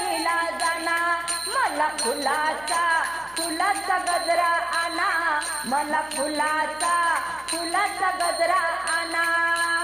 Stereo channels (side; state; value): left; noise; hum, 26 dB below the sound